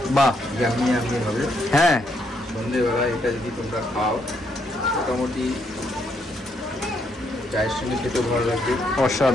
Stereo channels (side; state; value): both; normal; correlation 0.75